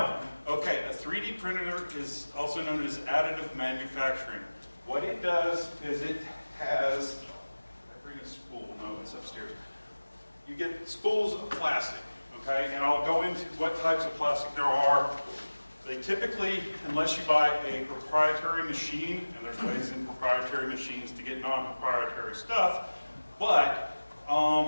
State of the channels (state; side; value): inverted; both; correlation -1.00